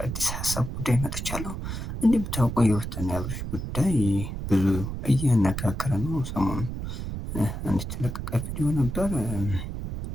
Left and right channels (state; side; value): noise; right; rumble, 6 dB below the sound